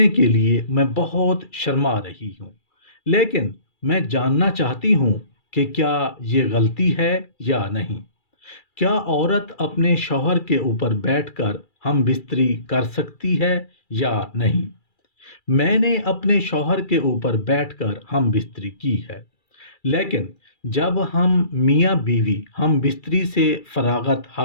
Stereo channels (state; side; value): late; right; 2.3 ms